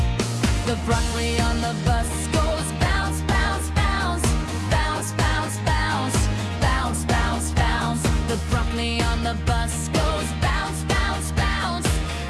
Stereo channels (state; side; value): identical; both; correlation 1.00